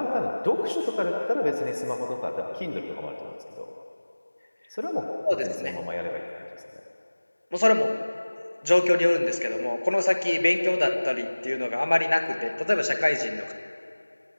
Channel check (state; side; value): inverted; both; correlation -1.00